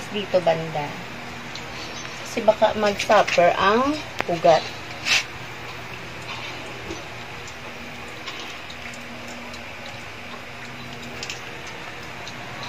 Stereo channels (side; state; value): both; identical; correlation 1.00